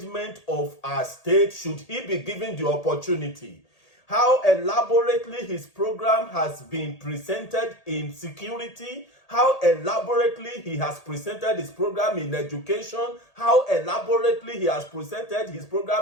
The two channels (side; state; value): right; late; 1.8 ms